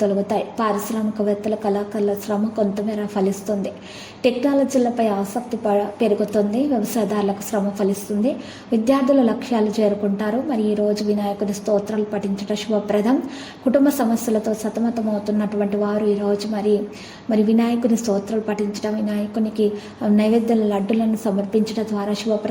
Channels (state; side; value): identical; both; correlation 1.00